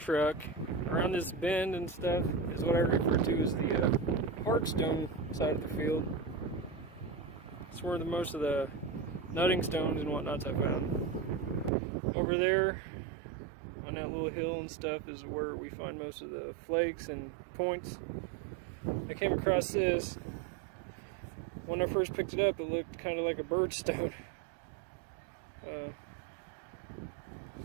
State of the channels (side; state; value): left; drops out; at 11.7 s